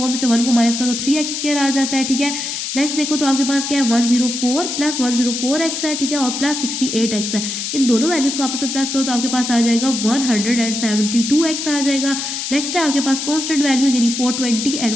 में से 1 को माइनस करो तो 3x स्क्वायर आ जाता है, ठीक है। नेक्स्ट देखो तो आपके पास क्या है 104 प्लस 104x है, ठीक है, और प्लस 68x है। इन दोनों वैल्यूज को आपस में प्लस करो तो आपके पास आ जाएगा 172x आ जाएगा। नेक्स्ट है आपके पास कॉन्स्टेंट वैल्यूज यानी 420 एंड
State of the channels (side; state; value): left; noise; hiss, 4 dB below the sound